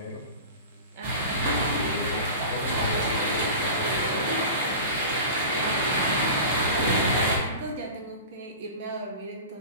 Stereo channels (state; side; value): inverted; both; correlation -0.33